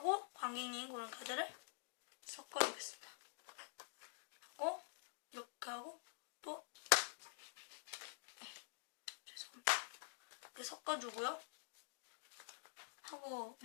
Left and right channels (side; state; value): right; silent; digital silence